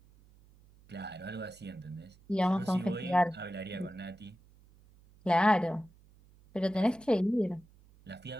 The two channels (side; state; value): right; noise; hum, 27 dB below the sound